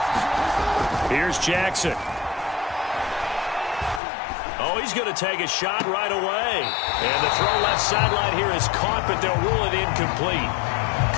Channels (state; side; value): drops out; right; at 4.0 s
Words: Here's Jackson. Oh, he's going to take a shot right away. And the throw left sideline here is caught, but they'll rule it incomplete.